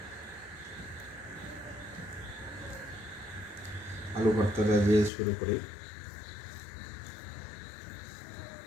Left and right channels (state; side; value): drops out; right; at 5.1 s